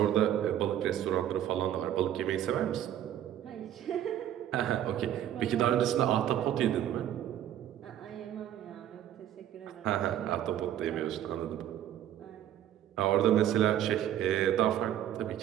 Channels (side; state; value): left; quieter; 11.3 dB